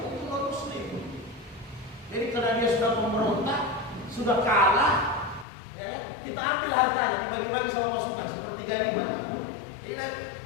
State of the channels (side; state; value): right; drops out; at 5.5 s